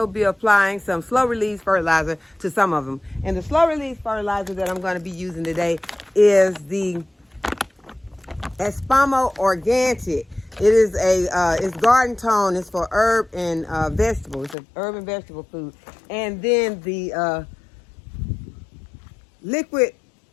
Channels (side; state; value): right; drops out; at 14.6 s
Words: be applying some slow release fertilizer to some of them. And the slow release fertilizer that I'm going to be using today is the Espamo Organic. It is it's garden tone. It's for herb and vegetable. It's an herb and vegetable food. And then the liquid